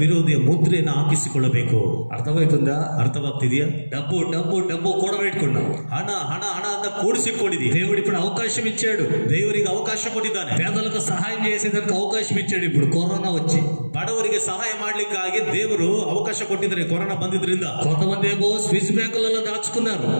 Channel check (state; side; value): inverted; both; correlation -1.00